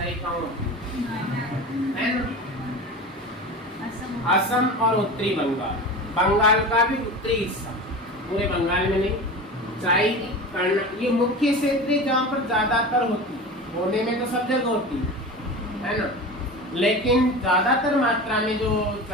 कौन है ना? असम और उत्तरी बंगाल, बंगाल का भी उत्तरी हिस्सा, पूरे बंगाल में नहीं। चाय, ये मुख्य क्षेत्र है जहाँ पर ज्यादातर होती है, होने में तो सब जगह होती है ना, लेकिन ज्यादातर मात्रा में जो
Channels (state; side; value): normal; both; correlation 0.31